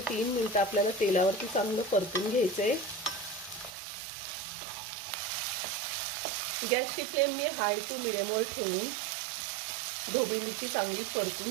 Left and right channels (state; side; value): drops out; left; at 3.8 s